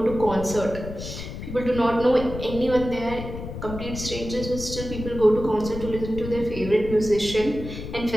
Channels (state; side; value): noise; left; rumble, 9 dB below the sound